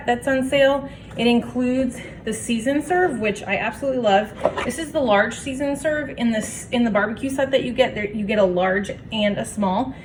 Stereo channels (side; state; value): both; identical; correlation 1.00